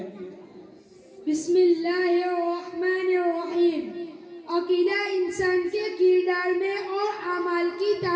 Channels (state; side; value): identical; both; correlation 1.00